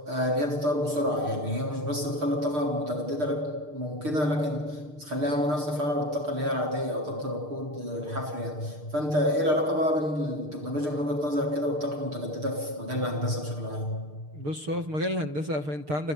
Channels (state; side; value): late; left; 6.6 ms